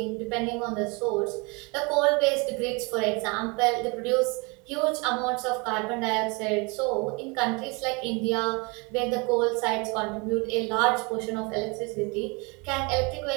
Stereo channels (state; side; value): quieter; left; 29.4 dB